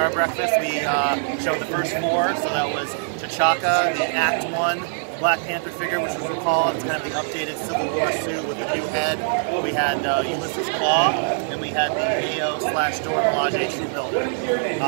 breakfast. We showed the first four. So that was T'Chaka, the Act 1 Black Panther figure, which was recalled. It's kind of the updated Civil War suit with the new head. We had Ulysses Claw, and we had the AO/Dora Milaje True Builder.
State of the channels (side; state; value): left; silent; 64 dB below the other